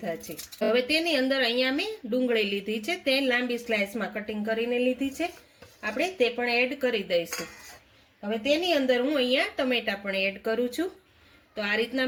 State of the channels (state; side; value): identical; both; correlation 1.00